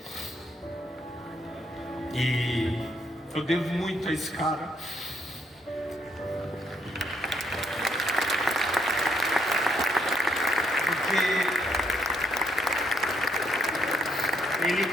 E eu devo muito a esse cara. Ele,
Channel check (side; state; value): both; normal; correlation 0.72